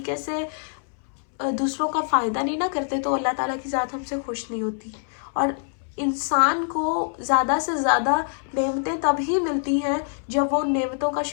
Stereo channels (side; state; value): right; silent; 62 dB below the other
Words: से दूसरों का फ़ायदा नहीं ना करते तो अल्लाह ताला की ज़ात हमसे खुश नहीं होती। और इंसान को ज़्यादा से ज़्यादा नेमतें तभी मिलती हैं जब वो नेमतों का